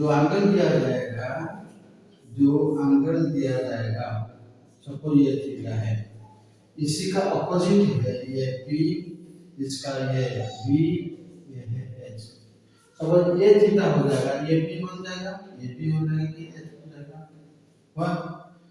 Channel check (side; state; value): both; identical; correlation 1.00